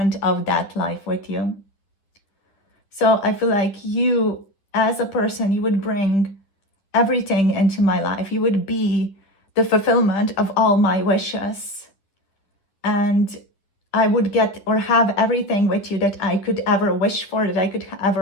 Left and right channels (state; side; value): late; right; 10 ms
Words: of that life with you. So I feel like you, as a person, you would bring everything into my life. You would be the fulfillment of all my wishes. And I would get or have everything with you that I could ever wish for, that I could